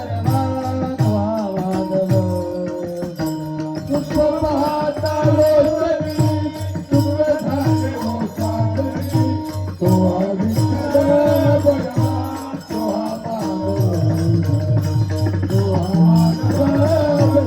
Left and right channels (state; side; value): identical; both; correlation 1.00